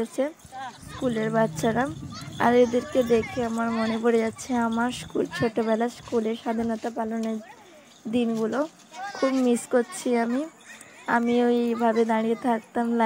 স্কুলের বাচ্চারা। আর এদেরকে দেখে আমার মনে পড়ে যাচ্ছে আমার ছোটোবেলা স্কুলের স্বাধীনতা পালনের দিনগুলো। খুব মিস করছি আমি ওইভাবে দাঁড়িয়ে থাকতাম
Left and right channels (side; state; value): both; identical; correlation 1.00